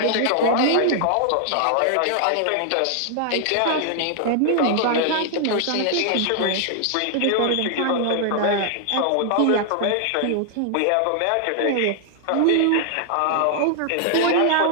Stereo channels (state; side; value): different; both; correlation 0.00